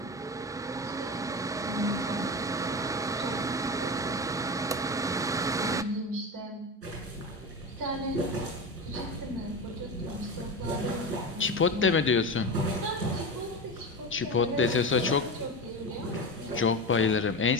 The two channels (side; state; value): both; normal; correlation 0.23